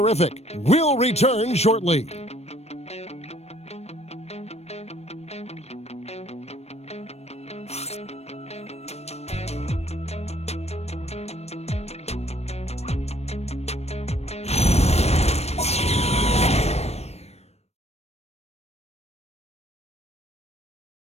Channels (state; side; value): late; right; 0.31 ms